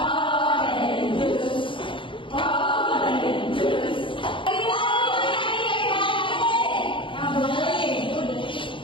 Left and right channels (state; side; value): late; right; 0.25 ms